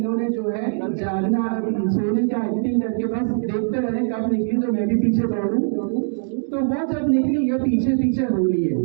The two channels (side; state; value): left; silent; digital silence